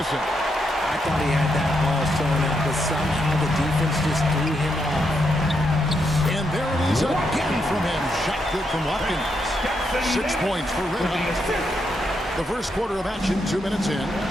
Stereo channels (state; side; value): normal; both; correlation 0.80